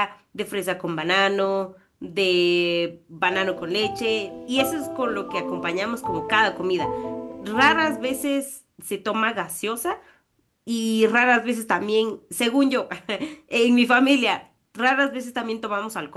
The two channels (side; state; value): both; identical; correlation 1.00